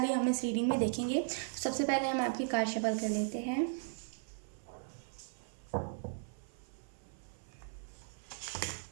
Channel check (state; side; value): silent; left; 53 dB below the other